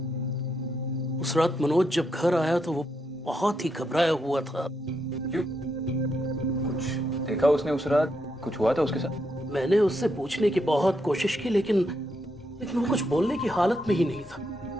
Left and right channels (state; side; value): normal; both; correlation 0.80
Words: उस रात मनोज जब घर आया तो वो बहुत ही घबराया हुआ था। क्यों? कुछ देखा उसने उस रात? कुछ हुआ था उसके साथ? मैंने उससे पूछने की बहुत कोशिश की, लेकिन वो कुछ बोलने की हालत में ही नहीं था।